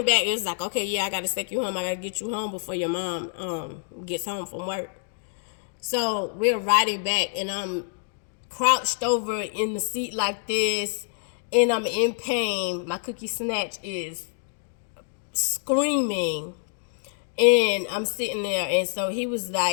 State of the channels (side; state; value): right; silent; digital silence